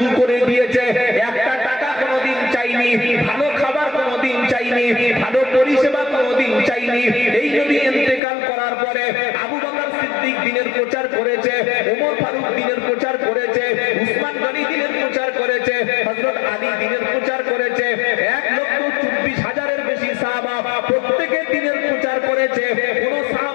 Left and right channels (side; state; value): right; drops out; at 8.2 s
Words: করে দিয়েছে। একটা টাকা কোনোদিন চাইনি, ভালো খাবার কোনোদিন চাইনি, ভালো পরিষেবা কোনোদিন চাইনি। এই নবী ইন্তেকাল করার পরে আবু বকর সিদ্দিক দিনের প্রচার করেছে, ওমর ফারুক দিনের প্রচার করেছে, উসমান গনি দিনের প্রচার করেছে, হযরত আলী দিনের প্রচার করেছে। 1,24,000-এর বেশি সাহাবা প্রত্যেকে দিনের প্রচার করেছে। কোন